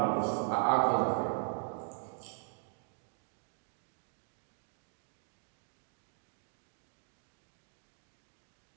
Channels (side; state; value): left; silent; digital silence